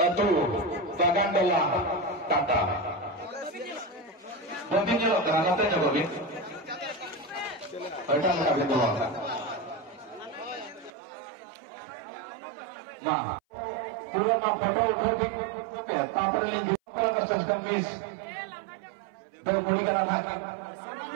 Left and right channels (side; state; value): left; drops out; at 10.9 s